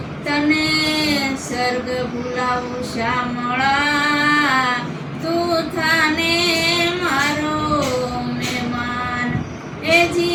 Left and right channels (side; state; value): both; identical; correlation 1.00